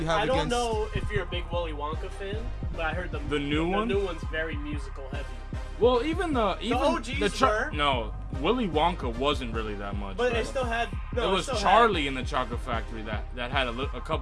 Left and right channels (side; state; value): both; identical; correlation 1.00